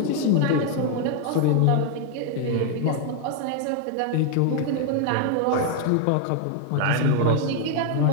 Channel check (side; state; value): both; different; correlation 0.00